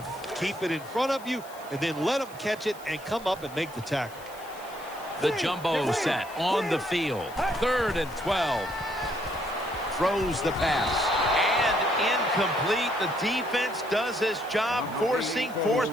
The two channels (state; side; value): noise; left; hiss, 21 dB below the sound